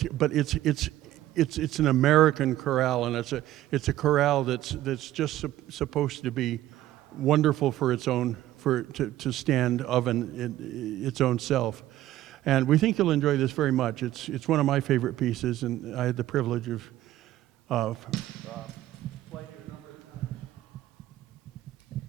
But it's an American chorale, and it's a chorale that's just supposed to be wonderful for its own to stand of its own self. And we think you'll enjoy this very much. It's one of my favorite pieces, and I had the privilege of playing it a number of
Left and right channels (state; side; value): quieter; left; 14.3 dB